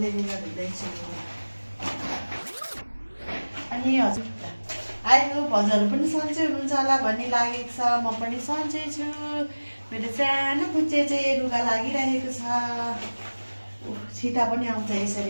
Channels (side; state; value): both; inverted; correlation -1.00